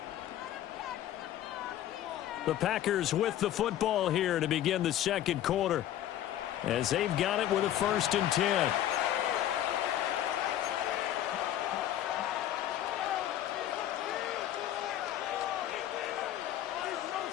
The Packers with the football here to begin the second quarter, as they've got it with a first and 10.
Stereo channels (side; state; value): right; quieter; 12.1 dB